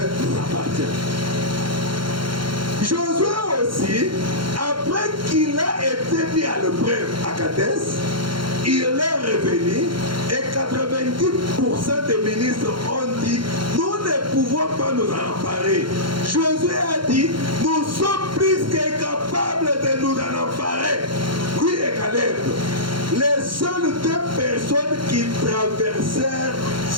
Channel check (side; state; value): left; late; 0.73 ms